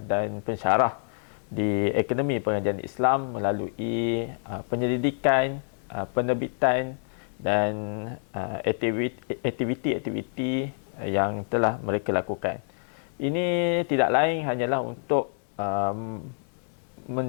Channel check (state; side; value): silent; right; digital silence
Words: dan pensyarah di Akademi Pengajian Islam melalui penyelidikan, penerbitan dan aktiviti-aktiviti yang telah mereka lakukan. Ini tidak lain hanyalah untuk